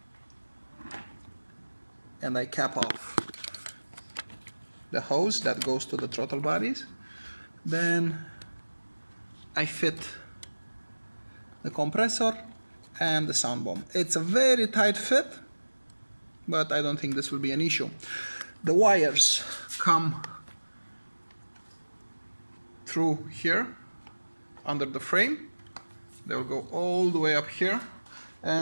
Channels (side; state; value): both; inverted; correlation -1.00